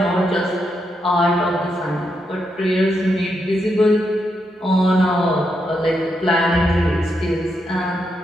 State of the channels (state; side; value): normal; both; correlation 0.82